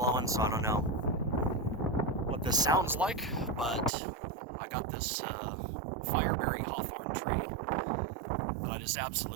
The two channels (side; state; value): left; drops out; at 3.9 s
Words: so I don't know what this sounds like, but I got this Fireberry Hawthorne tree that I just